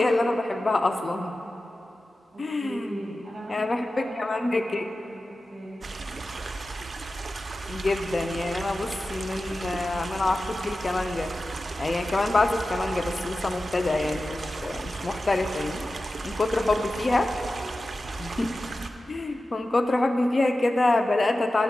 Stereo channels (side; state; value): both; normal; correlation 0.94